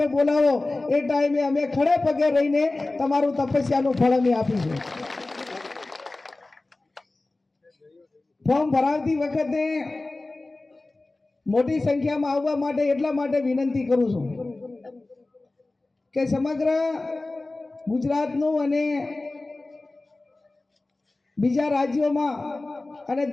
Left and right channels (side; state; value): right; quieter; 3.1 dB